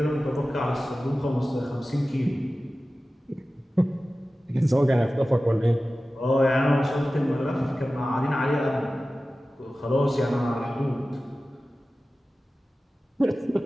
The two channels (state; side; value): normal; both; correlation 0.95